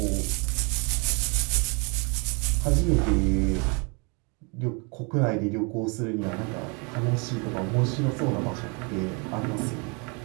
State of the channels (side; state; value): left; quieter; 32.4 dB